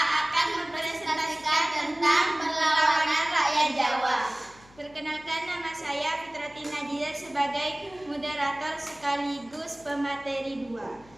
mempresentasikan tentang perlawanan rakyat Jawa. Perkenalkan, nama saya Fitrati Nadia sebagai moderator sekaligus pemateri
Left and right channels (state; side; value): noise; left; hum, 25 dB below the sound